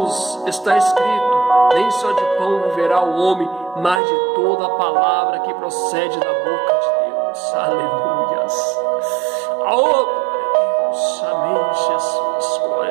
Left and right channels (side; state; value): left; drops out; at 4.0 s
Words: está escrito, nem só de pão viverá o homem, mas de toda a palavra que procede da boca de Deus. Aleluias. Oh, glória a Deus. Amém, Jesus.